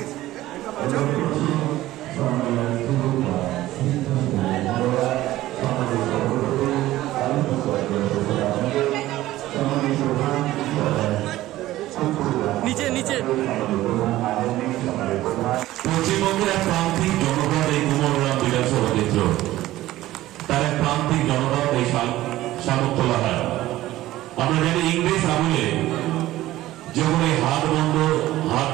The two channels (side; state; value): left; quieter; 15.7 dB